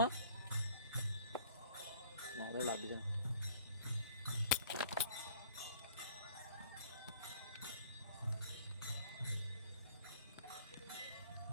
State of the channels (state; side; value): inverted; both; correlation -0.53